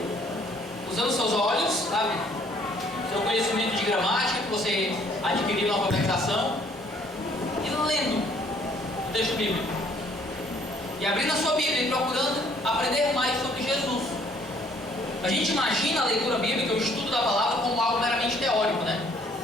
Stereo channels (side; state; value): both; normal; correlation 0.61